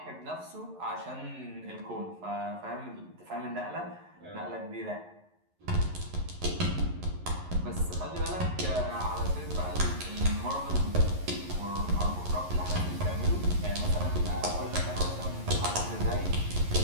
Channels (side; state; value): left; late; 11 ms